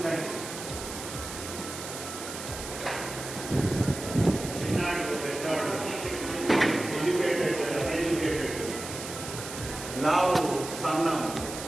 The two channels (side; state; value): right; noise; hiss, 9 dB below the sound